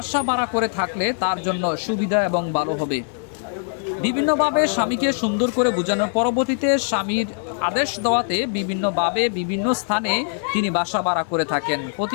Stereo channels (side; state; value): right; silent; digital silence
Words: ভাড়া করে থাকলে তার জন্য সুবিধা এবং ভালো হবে। বিভিন্নভাবে স্বামীকে সুন্দর করে বোঝানোর পরবর্তীতে স্বামীর আদেশ দেওয়াতে বিভিন্নভাবে বিভিন্ন স্থানে তিনি বাসা ভাড়া করে থাকেন।